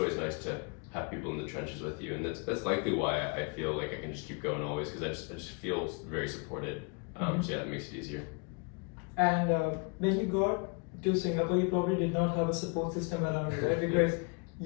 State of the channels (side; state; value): right; quieter; 34.2 dB